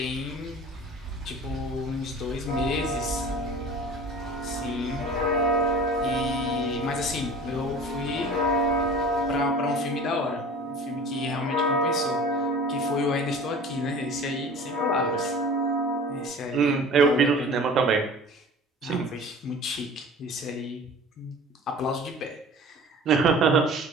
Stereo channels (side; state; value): both; normal; correlation 0.41